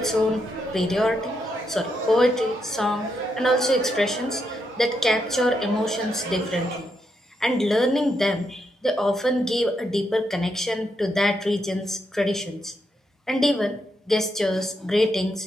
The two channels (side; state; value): both; normal; correlation 0.81